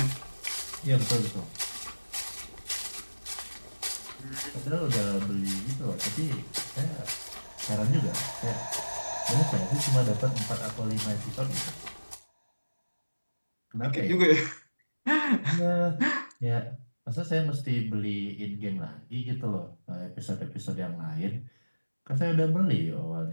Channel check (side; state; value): both; inverted; correlation -1.00